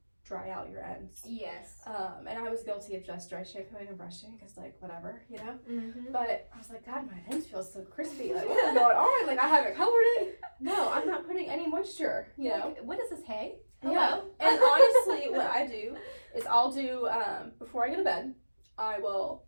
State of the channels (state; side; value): inverted; both; correlation -1.00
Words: dry out your ends. Yes. And I was guilty of just dry shampooing and brushing because, like, whatever, you know? But I was like, God, my ends feel so crispy. Like, what is going on? Like, I haven't colored it. No, I'm not putting any moisture, you know? Like, what is this, hay? Yeah. And honestly, what I do is I'll do, before I go to bed, I will